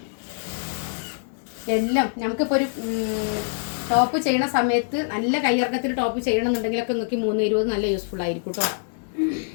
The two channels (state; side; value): silent; right; digital silence